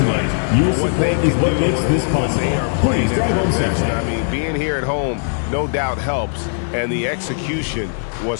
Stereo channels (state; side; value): silent; right; digital silence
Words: one for what they can do when they are playing at their best. I mean, being here at home no doubt helps, and the execution